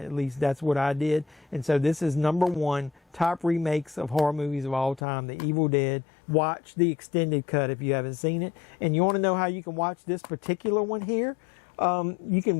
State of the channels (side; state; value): right; drops out; at 5.0 s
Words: At least that's what I did. And so this is #1 top remakes of horror movies of all time, The Evil Dead. Watch the extended cut if you haven't seen it. And you want to know how you can watch this particular one here? You